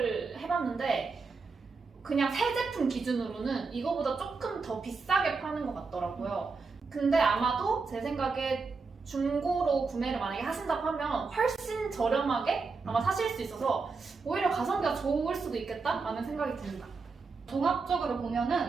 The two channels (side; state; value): left; quieter; 4.5 dB